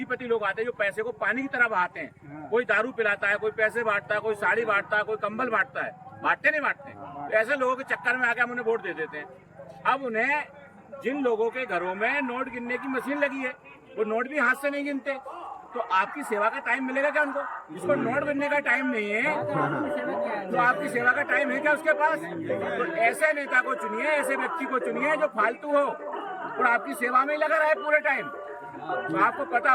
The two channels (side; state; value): both; identical; correlation 1.00